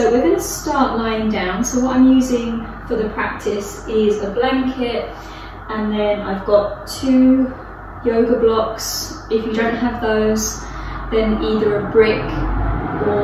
we're going to start lying down. So what I'm using for the practice is a blanket, and then I've got 2 yoga blocks. If you don't have those, then either a brick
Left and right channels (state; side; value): identical; both; correlation 1.00